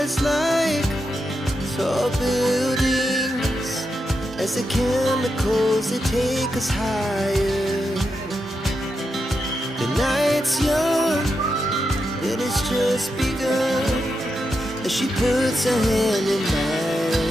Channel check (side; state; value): both; normal; correlation 0.86